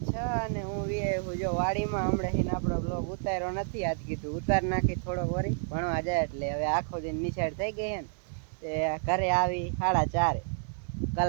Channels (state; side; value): silent; left; 58 dB below the other